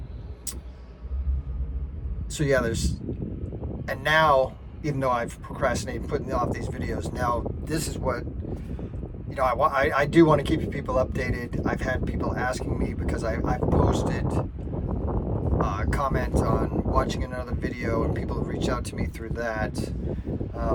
So yeah, and now, even though I've procrastinated putting off these videos, now this is what, I do want to keep people updated. I've had people asking me, because I've posted comments on watching another video, and people have reached out to me through that,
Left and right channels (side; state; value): both; identical; correlation 1.00